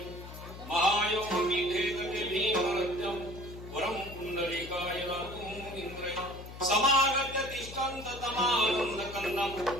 महायोग मीठे गटे भीमरत्यम वरम पुंडलिकाय लातूम इंद्रय समागत्य तिष्ठन्त तमानंद कन्दम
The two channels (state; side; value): noise; left; hum, 13 dB below the sound